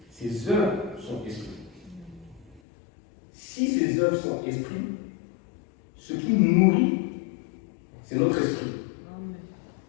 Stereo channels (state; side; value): drops out; right; at 2.6 s